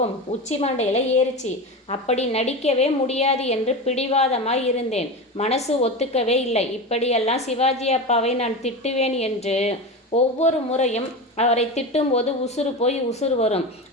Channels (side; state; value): both; normal; correlation 0.24